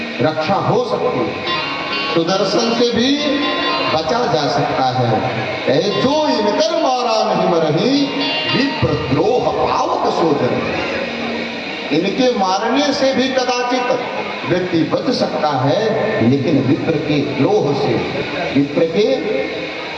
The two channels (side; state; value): both; identical; correlation 1.00